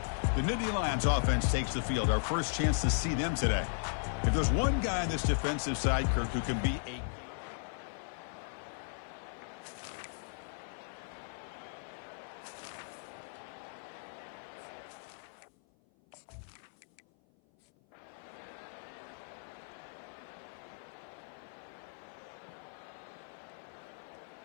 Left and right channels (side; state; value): right; silent; 53 dB below the other